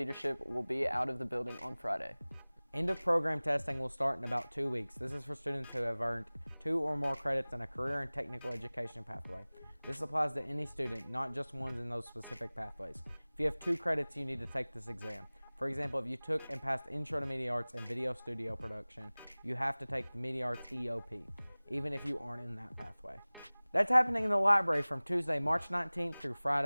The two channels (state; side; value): inverted; both; correlation -1.00